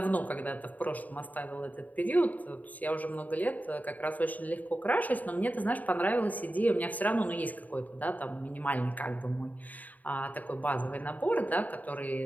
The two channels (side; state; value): right; late; 0.077 ms